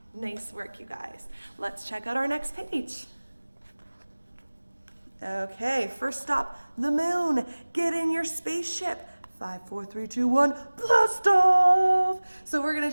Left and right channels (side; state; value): both; inverted; correlation -1.00